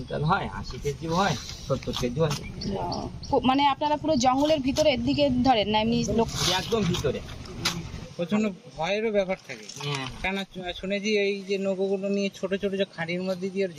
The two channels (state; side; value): identical; both; correlation 1.00